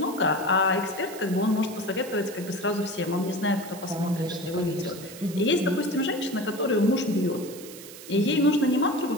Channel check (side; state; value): right; noise; hiss, 15 dB below the sound